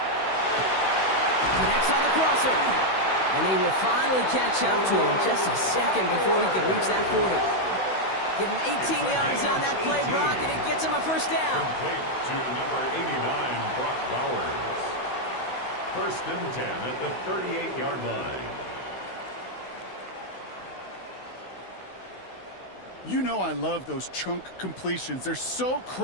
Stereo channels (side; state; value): right; late; 16 ms